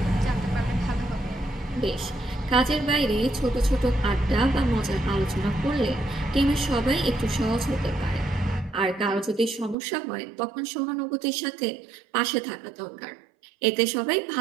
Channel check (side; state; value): left; drops out; at 9.8 s